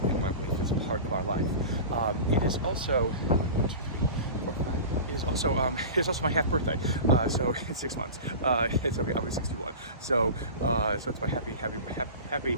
and why belief is a part of our life. It is also It is also my half birthday, so in 6 months. I'll be 61. So it's my happy half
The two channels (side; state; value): both; inverted; correlation -0.33